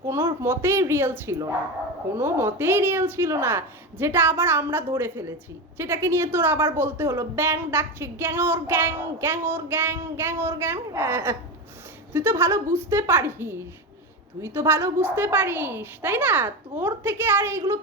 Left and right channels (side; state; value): both; normal; correlation 0.19